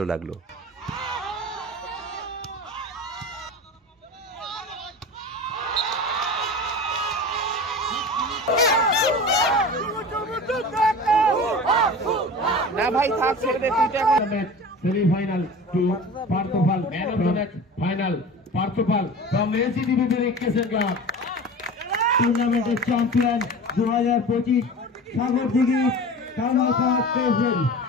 লাগলো। না ভাই থাক ছেড়ে দে তুই এখন semifinal two Parthapal man of the match final Parthapal from ACDBB cricket club টুর্নামেন্টের চ্যাম্পিয়ন 2025 সাগরদিঘি কামারপাড় প্রেসিডেন্ট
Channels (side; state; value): both; normal; correlation 0.35